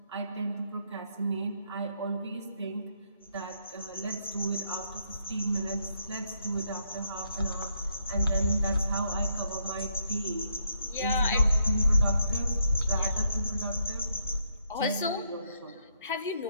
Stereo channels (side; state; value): both; inverted; correlation -0.75